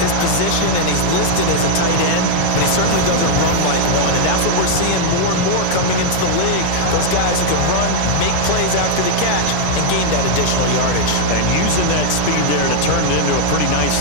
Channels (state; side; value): different; both; correlation 0.00